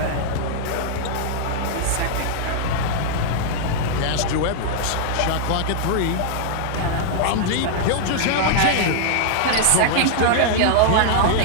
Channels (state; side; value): different; both; correlation -0.01